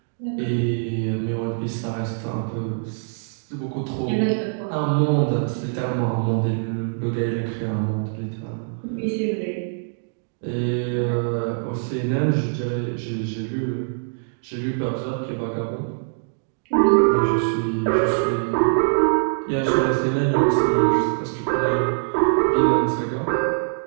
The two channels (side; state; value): left; silent; digital silence